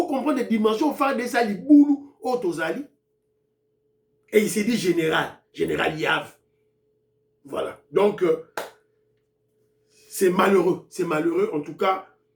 comprenez les dimensions FARDC Zali Boulou Otozali. Et il s'est dit général Yav. Voilà. Donc, c'est malheureux. C'est malheureux. En tout cas,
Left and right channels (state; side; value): identical; both; correlation 1.00